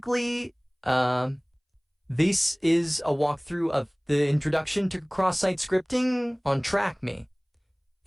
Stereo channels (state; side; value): identical; both; correlation 1.00